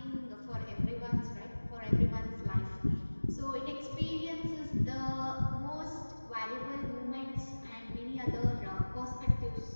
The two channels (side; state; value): both; inverted; correlation -1.00